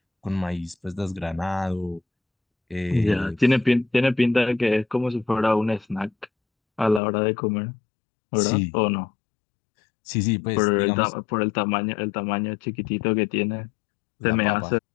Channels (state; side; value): drops out; right; at 7.0 s